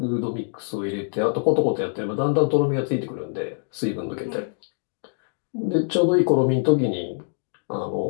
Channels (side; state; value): right; silent; digital silence